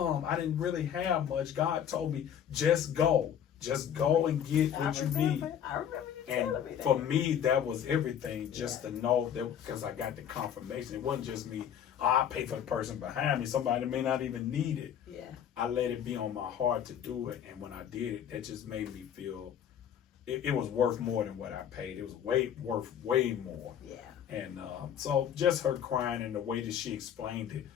I didn't really have much. God told me, just go. Just go and get what you need. I remember you and telling me that. For me, that was everything, just to know that, because I got the confirmation. It wasn't just me, I pay for the person behind me. Somebody may not even need it. Yeah. I let it be on my heart to do it. And when I did it, that just made me feel it was worth more than what I paid. It was worth way more. Yeah. And so just her crying and the way that she explained it,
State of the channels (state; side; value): quieter; right; 9.2 dB